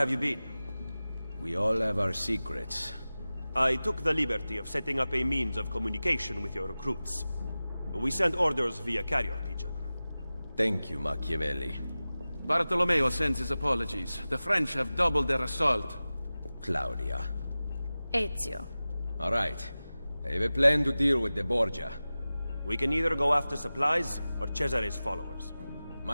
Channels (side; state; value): both; inverted; correlation -0.96